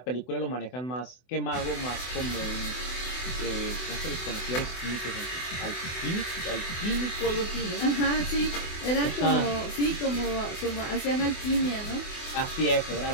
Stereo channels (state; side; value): late; right; 24 ms